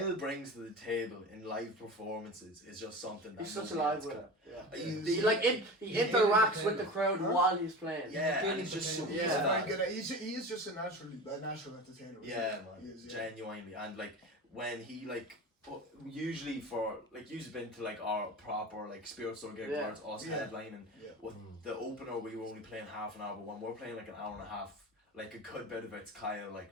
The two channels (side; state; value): both; normal; correlation 0.31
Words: brings to the table in live performances is just something that He's such a nobody live else with can. it. Yeah. He- He he interacts hit with the the crowd Huh? while he's playing. Yeah, and he's just so Yeah. good He's at very that. good at. He is just a natural entertainer. Yeah, He man, is, yeah. genuinely, and like when he like usually for like you've been to like our proper like Spirit Store gig Yeah. where it's us Yeah. headlining. Yeah. With the opener, we were only playing half an hour, but when we're playing like an hour and a half, like a good bit of it's Kyle like